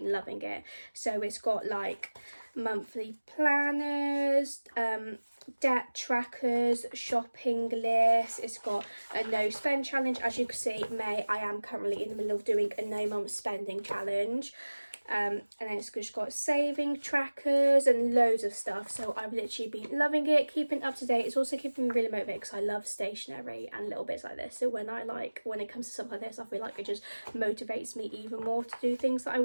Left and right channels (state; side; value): inverted; both; correlation -1.00